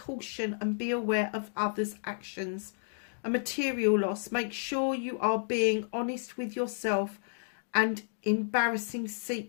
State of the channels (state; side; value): silent; right; digital silence